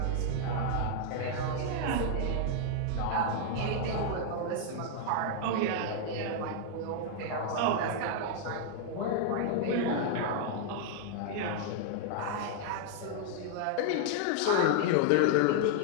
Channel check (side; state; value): both; different; correlation 0.00